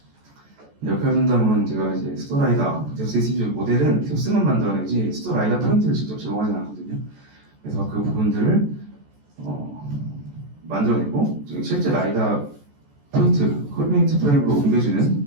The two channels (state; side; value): late; left; 14 ms